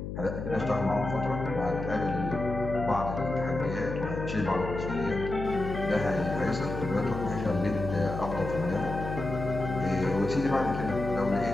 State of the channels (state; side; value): noise; left; hum, 6 dB below the sound